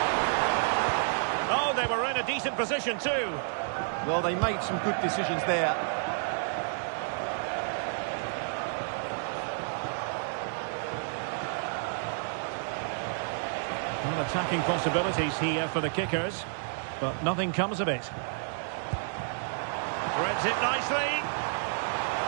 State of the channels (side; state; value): left; silent; digital silence